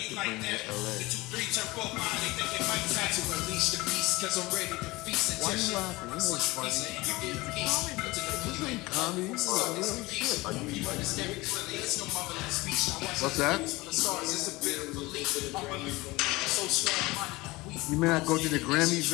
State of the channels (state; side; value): quieter; right; 21.5 dB